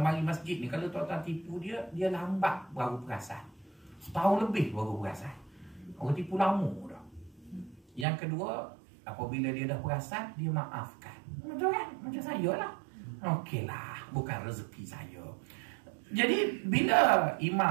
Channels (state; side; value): drops out; left; at 8.1 s